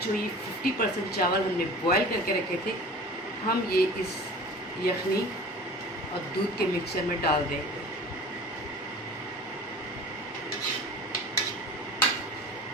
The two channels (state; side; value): normal; both; correlation 0.40